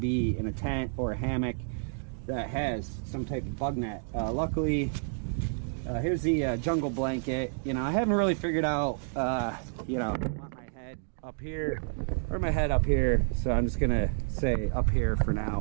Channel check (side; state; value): left; silent; digital silence